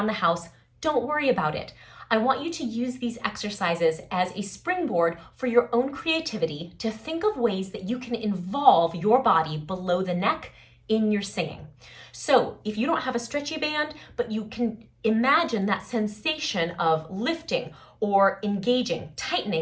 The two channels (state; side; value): identical; both; correlation 1.00